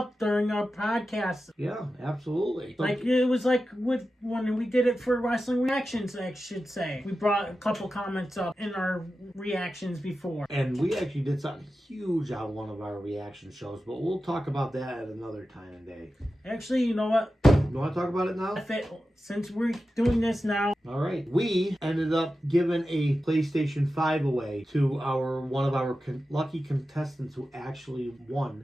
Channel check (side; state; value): both; normal; correlation 0.92